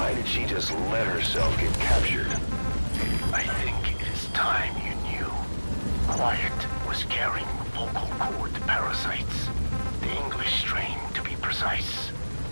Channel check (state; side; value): inverted; both; correlation -1.00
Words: did she just let herself get captured? I think it is time you knew. Quiet was carrying vocal cord parasites. The English strain, to be precise.